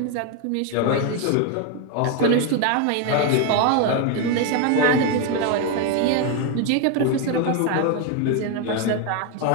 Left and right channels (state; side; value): different; both; correlation 0.01